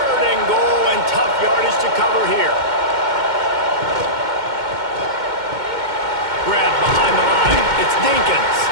and goal, and tough yardage to cover here. Grab behind the line. It's Dinkins.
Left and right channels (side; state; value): left; late; 2.1 ms